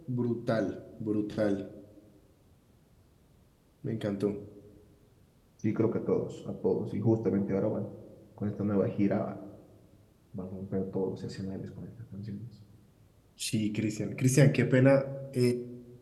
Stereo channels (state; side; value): identical; both; correlation 1.00